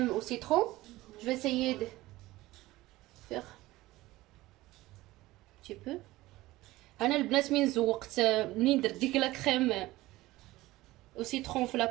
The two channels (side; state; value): left; quieter; 18.1 dB